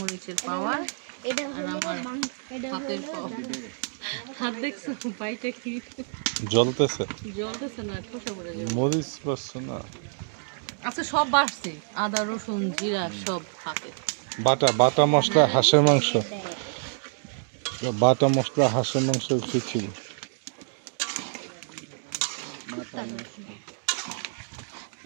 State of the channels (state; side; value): silent; left; 60 dB below the other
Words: পাওয়ার আর আমার হাতের পাওয়ার। হাত দেখছো পাইটা কি জ্বলতেছে। জ্বলতেছে না, ঠোসা পড়ে যাবে। মরিচ পাচ্ছ না। আচ্ছা সব বাড়ছে, আদা রসুন জিরা সব হাতে। বাটা মশলা হাঁসের মাংস, বাটা মশলা হাঁসের মাংস খিচুড়ি।